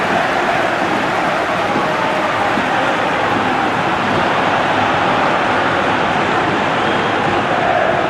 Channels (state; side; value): identical; both; correlation 1.00